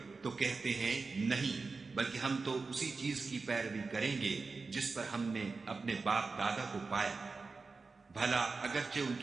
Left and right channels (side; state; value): left; quieter; 4.2 dB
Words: تو کہتے ہیں نہیں، بلکہ ہم تو اسی چیز کی پیروی کریں گے جس پر ہم نے اپنے باپ دادا کو پایا۔ بھلا اگرچہ ان